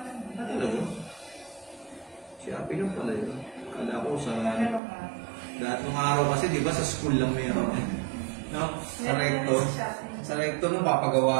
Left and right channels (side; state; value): left; drops out; at 4.8 s